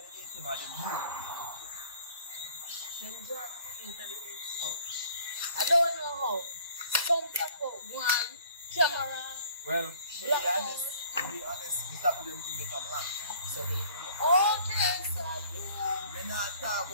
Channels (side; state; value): both; inverted; correlation -0.54